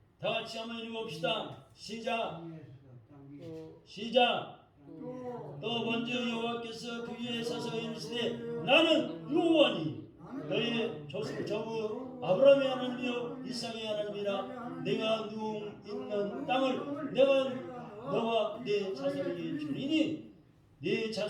다 같이 한번 읽어봅시다. 시작. 또 먼저 여호와께서 그 위에 서서 이르시되 나는 여호와니 너의 조부 아브라함의 하나님이요 이삭의 하나님이라 내가 누움 있는 땅을 내가 너와 네 자손에게 주리니 네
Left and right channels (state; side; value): identical; both; correlation 1.00